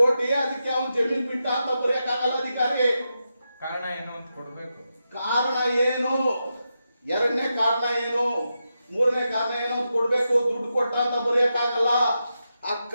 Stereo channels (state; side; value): inverted; both; correlation -0.88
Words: ಅದಕ್ಕೆ ಅವನು ಜಮೀನ್ ಬಿಟ್ಟ ಅಂತ ಬರೆಯಕ್ಕಾಗಲ್ಲ ಅಧಿಕಾರಿ. ಕಾರಣ ಏನು ಅಂತ ಕೊಡ್ಬೇಕು. ಕಾರಣ ಏನು, 2ನೇ ಕಾರಣ ಏನು, 3ನೇ ಕಾರಣ ಏನು ಅಂತ ಕೊಡ್ಬೇಕು. ದುಡ್ಡು ಕೊಟ್ಟ ಅಂತ ಬರೆಯಕ್ಕಾಗಲ್ಲ. ಆ